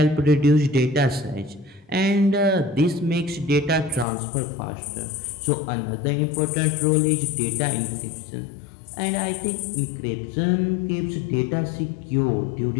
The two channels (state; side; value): drops out; right; at 4.0 s